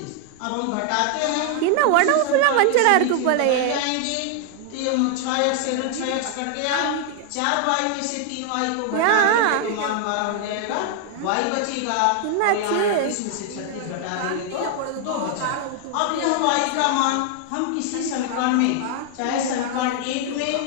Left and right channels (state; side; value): different; both; correlation 0.00